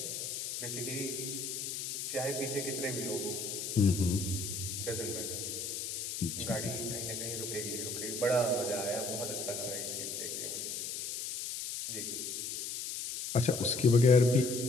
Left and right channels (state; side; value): noise; left; hiss, 4 dB below the sound